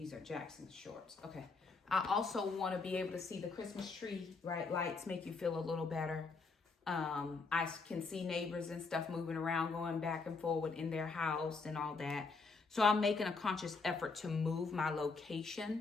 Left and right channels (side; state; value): right; quieter; 4.3 dB